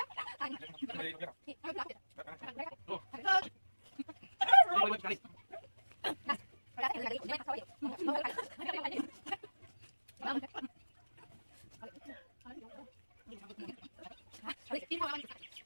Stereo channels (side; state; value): both; inverted; correlation -1.00